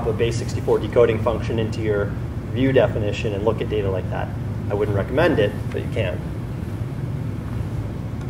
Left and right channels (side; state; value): both; identical; correlation 1.00